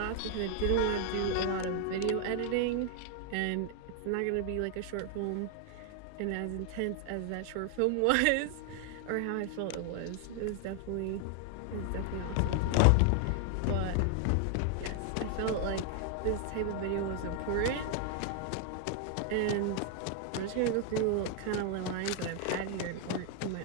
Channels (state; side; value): different; both; correlation 0.00